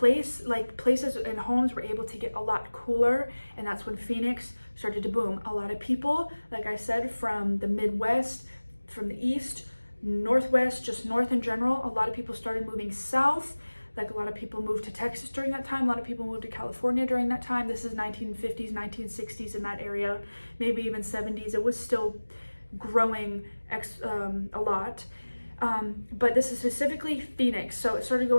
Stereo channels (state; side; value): inverted; both; correlation -1.00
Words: and homes were able to get a lot cooler, and that's when Phoenix started to boom. A lot of people, like I said, from the Midwest, from the East, Northwest, just North in general, a lot of people started moving south. Like a lot of people moved to Texas during that time. A lot of people moved to California during that time. This is 1950s, 1960s in that area, maybe even 70s. It was still growing a lot. But this is specifically Phoenix. So it started